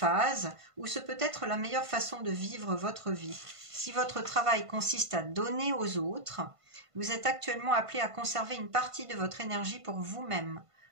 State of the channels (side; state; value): left; late; 1.5 ms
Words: ou ce peut être la meilleure façon de vivre votre vie. Si votre travail consiste à donner aux autres, vous êtes actuellement appelé à conserver une partie de votre énergie pour vous-même.